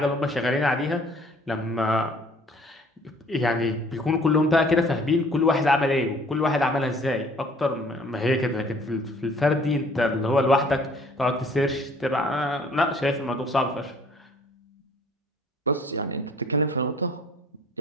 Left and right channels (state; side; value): normal; both; correlation 0.56